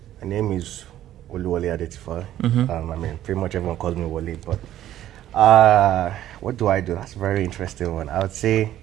My name is Oluwole Adetifa. I mean, pretty much everyone calls me Wole, but what do I do? That's a very interesting one. I would say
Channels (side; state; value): left; quieter; 12.6 dB